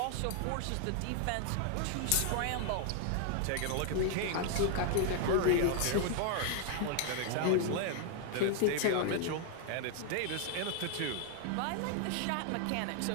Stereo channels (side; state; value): both; different; correlation 0.00